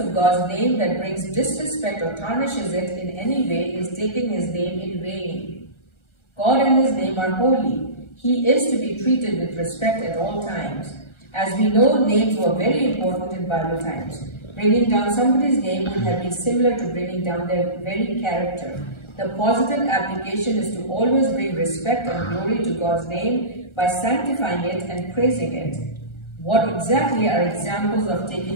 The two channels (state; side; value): late; right; 1.3 ms